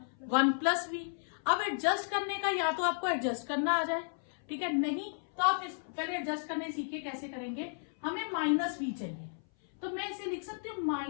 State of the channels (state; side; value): silent; right; 55 dB below the other